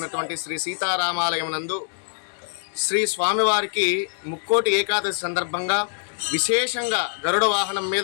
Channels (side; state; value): right; silent; digital silence